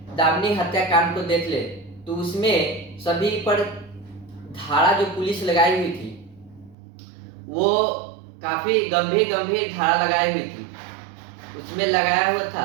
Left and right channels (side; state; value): left; drops out; at 6.8 s